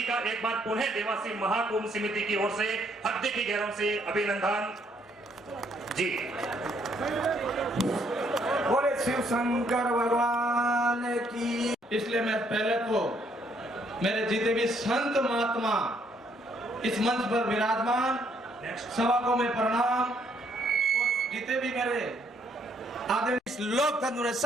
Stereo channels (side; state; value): both; normal; correlation 0.69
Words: का एक बार पुनः देवासी महाकुंभ समिति की ओर से हृदय की गहराइयों से अभिनंदन जी। बोले शिव शंकर भगवान की। इसलिए मैं पहले तो मेरे जितने भी संत महात्मा इस मंच पर विराजमान सभा को मैं प्रणाम, और जितने भी मेरे आदरणीय इस लोकतंत्र में